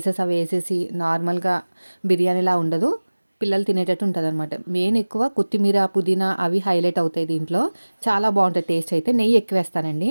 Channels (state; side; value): inverted; both; correlation -1.00